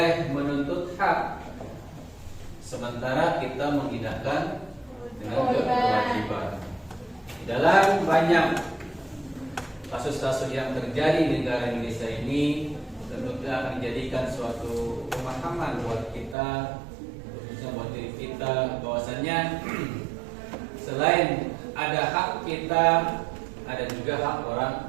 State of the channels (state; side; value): drops out; left; at 16.4 s